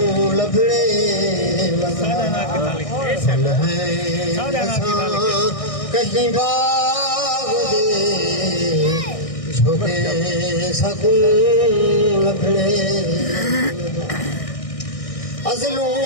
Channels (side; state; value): right; late; 1.6 ms